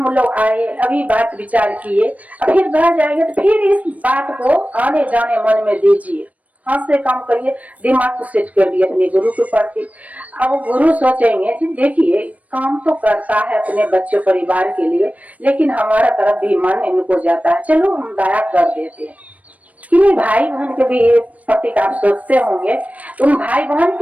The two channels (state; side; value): late; left; 0.069 ms